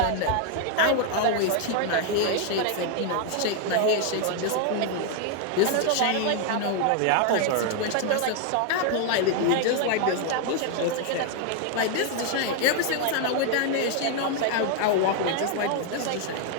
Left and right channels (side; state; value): both; different; correlation 0.00